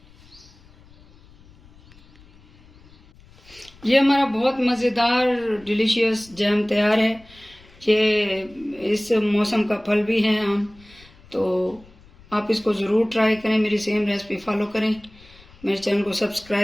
ये हमारा बहुत मज़ेदार डिलीशियस जैम तैयार है। ये इस मौसम का फल भी है आम। तो आप इसको ज़रूर ट्राई करें, मेरी सेम रेसिपी फॉलो करें, मेरे चैनल को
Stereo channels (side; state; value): left; noise; rumble, 26 dB below the sound